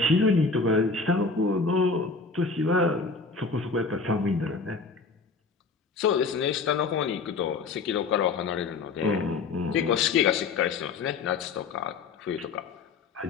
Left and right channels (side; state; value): right; quieter; 4.4 dB